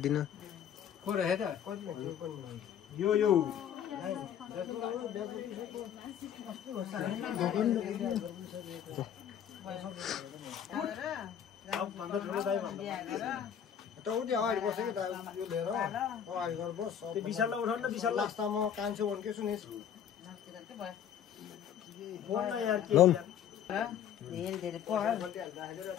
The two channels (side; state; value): right; quieter; 9.1 dB